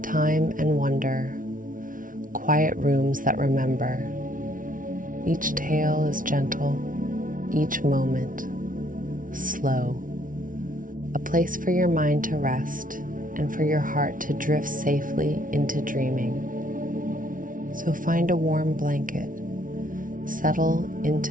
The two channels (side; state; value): left; late; 0.39 ms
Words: time and wonder, quiet rooms that remember. Each tale is gentle, each moment slow. A place for your mind to rest and for your heart to drift safely into dreaming. So find a warm blanket, settle